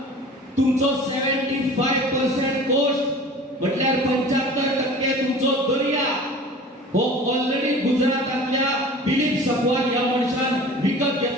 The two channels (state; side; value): normal; both; correlation 0.41